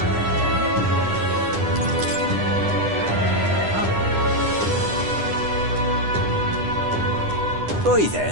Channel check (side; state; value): left; late; 9.9 ms